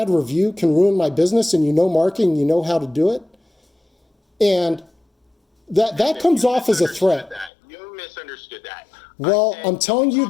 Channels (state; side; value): drops out; right; at 7.5 s